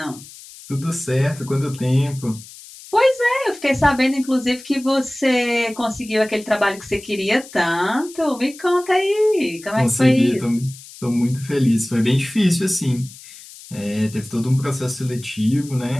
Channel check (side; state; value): left; noise; hiss, 18 dB below the sound